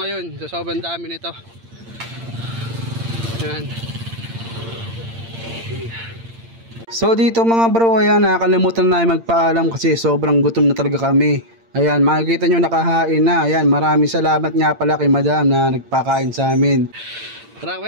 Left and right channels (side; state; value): left; late; 8.8 ms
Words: sa sobrang dami nito. Ayan. So dito mga bro, ayan, nakalimutan na magpaalam kasi sobrang gutom na talaga kami. Ayan, makikita nyo nakahain na. Ayan, maraming salamat nga pala kay madam na nagpakain sa amin. Tara,